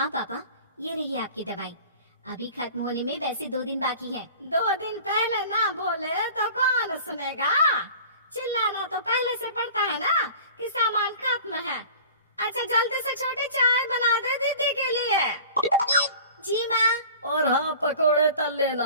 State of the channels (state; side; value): inverted; both; correlation -0.42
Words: पापा, ये रही आपकी दवाई। अभी खत्म होने में वैसे 2 दिन बाकी है। 2 दिन पहले ना बोले तो कौन सुनेगा? चिल्लाना तो पहले से पड़ता है ना कि सामान खत्म है। अच्छा जल्दी से छोटी चाय बना दे दीदी के लिए। जी माँ। और हाँ, पकोड़े तल लेना,